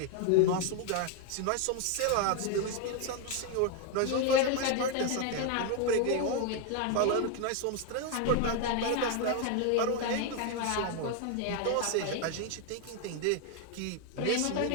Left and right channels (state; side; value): different; both; correlation 0.01